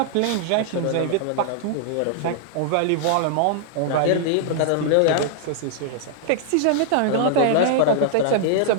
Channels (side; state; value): both; different; correlation -0.01